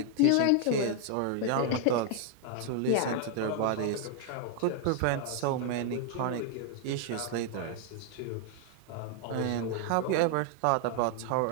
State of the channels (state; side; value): different; both; correlation 0.00